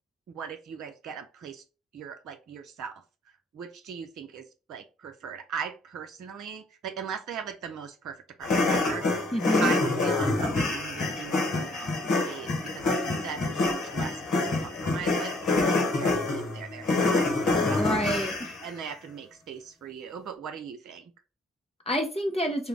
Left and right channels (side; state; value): both; normal; correlation 0.62